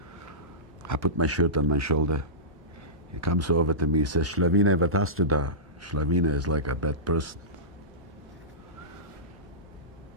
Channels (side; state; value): both; normal; correlation -0.19